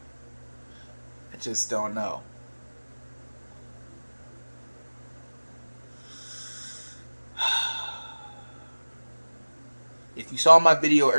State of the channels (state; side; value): inverted; both; correlation -1.00